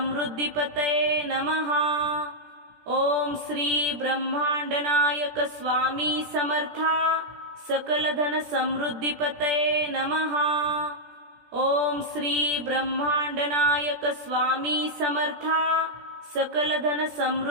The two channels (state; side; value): late; left; 17 ms